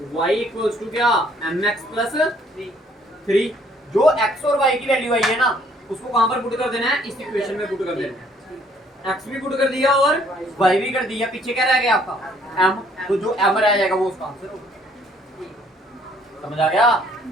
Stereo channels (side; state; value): both; normal; correlation 0.63